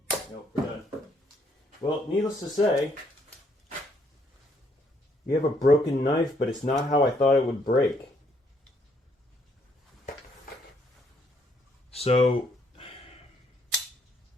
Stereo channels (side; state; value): both; normal; correlation 0.70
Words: Nope, we're done. Well, needless to say, we have a broken knife, but it's not how I thought it would break. So